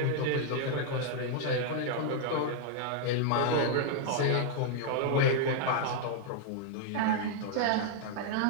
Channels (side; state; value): both; different; correlation -0.01